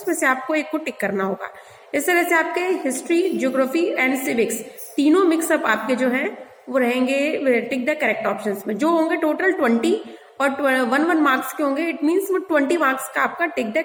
से आपको एक को टिक करना होगा। इस तरह से आपके हिस्ट्री, ज्योग्राफी एंड सिविक्स तीनों मिक्सअप आपके जो है वो रहेंगे टिक द करेक्ट ऑप्शंस में, जो होंगे टोटल 20 और 1 मार्क्स के होंगे। इट मीन्स वो 20 मार्क्स का आपका टिक द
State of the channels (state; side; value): identical; both; correlation 1.00